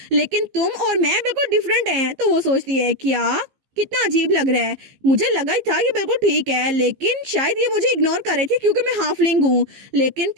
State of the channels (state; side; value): late; left; 15 ms